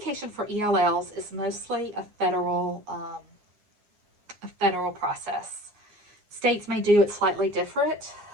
for ELLs is mostly a federal process. States may do it slightly different,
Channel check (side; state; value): left; late; 9.6 ms